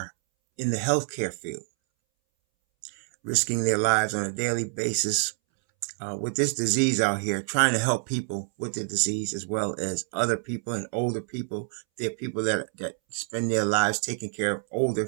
in the healthcare field, risking their lives on a daily basis with this disease out here, trying to help people with the disease as well as other people and older people. There are people that spend their lives taking care of older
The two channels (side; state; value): left; silent; 60 dB below the other